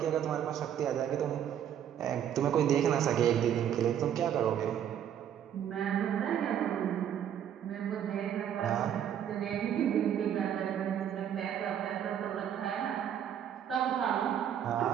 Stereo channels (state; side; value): quieter; left; 9.6 dB